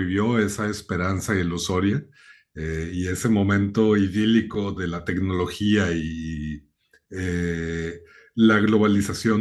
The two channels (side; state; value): both; identical; correlation 1.00